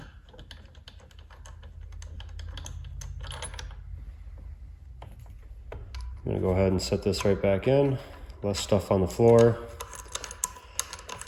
I'm gonna go ahead and set this right back in. Less stuff on the floor.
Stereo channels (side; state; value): both; identical; correlation 1.00